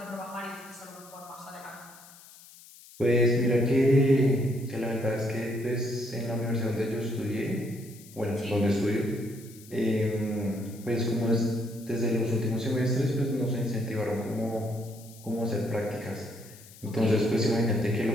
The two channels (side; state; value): left; noise; hiss, 21 dB below the sound